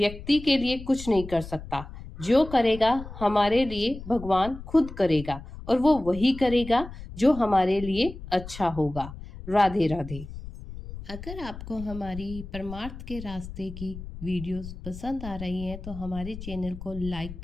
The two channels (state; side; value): noise; left; rumble, 12 dB below the sound